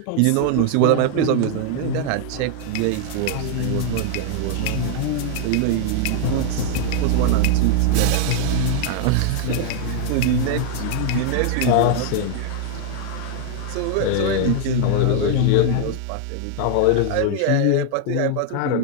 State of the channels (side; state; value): both; different; correlation 0.00